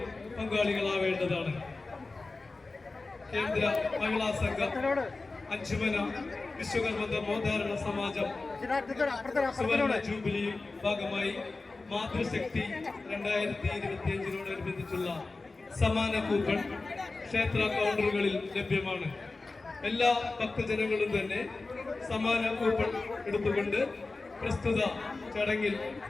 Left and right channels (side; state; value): right; quieter; 3.6 dB